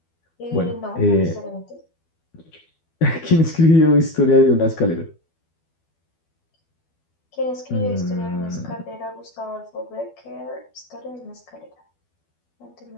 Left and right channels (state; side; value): late; right; 12 ms